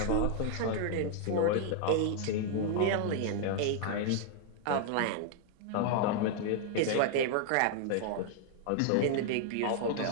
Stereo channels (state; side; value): different; both; correlation 0.00